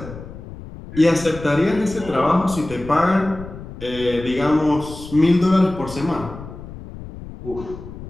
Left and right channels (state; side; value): noise; left; rumble, 13 dB below the sound